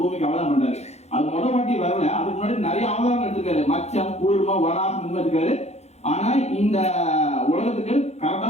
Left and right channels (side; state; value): right; late; 0.31 ms